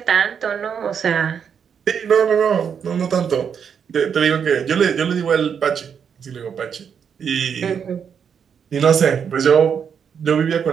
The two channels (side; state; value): left; quieter; 7.3 dB